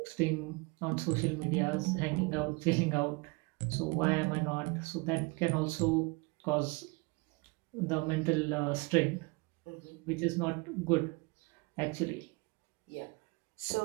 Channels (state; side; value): quieter; left; 27.6 dB